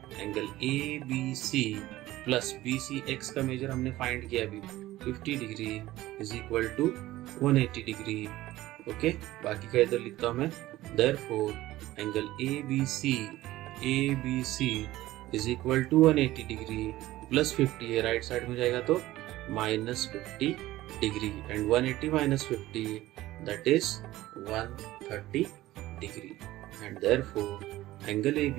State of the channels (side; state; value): left; quieter; 16.3 dB